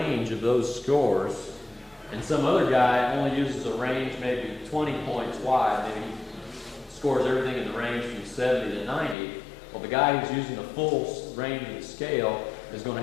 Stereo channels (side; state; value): right; drops out; at 9.2 s